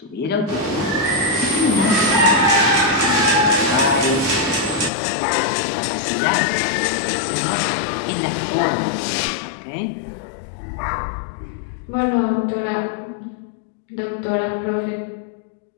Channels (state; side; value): drops out; right; at 4.9 s